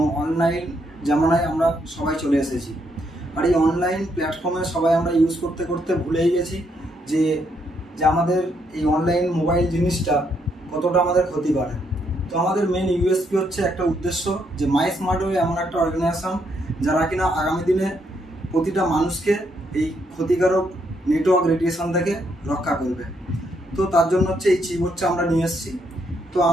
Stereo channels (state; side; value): normal; both; correlation 0.75